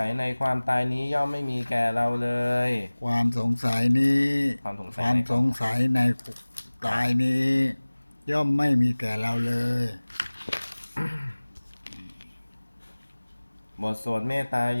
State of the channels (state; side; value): inverted; both; correlation -1.00